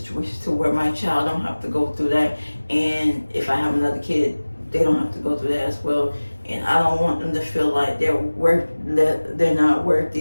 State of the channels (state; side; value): inverted; both; correlation -1.00